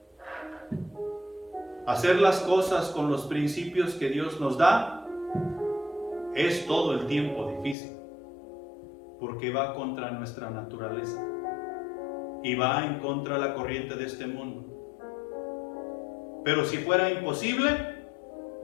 Hacer las cosas con los principios que Dios nos da es todo el tiempo difícil, porque va contra nuestra naturaleza y va en contra de la corriente de este mundo. Pero si fuera imposible,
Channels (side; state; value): right; drops out; at 7.8 s